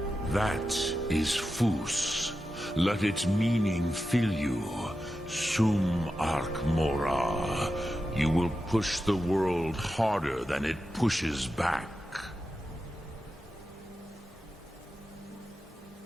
That is Fus. Let its meaning fill you. Sum Ark Mora. You will push the world harder than it pushes back.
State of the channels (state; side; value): normal; both; correlation 0.90